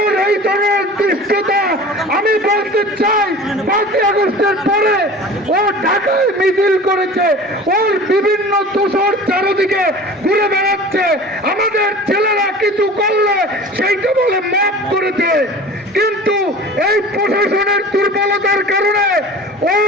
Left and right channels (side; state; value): both; normal; correlation 0.39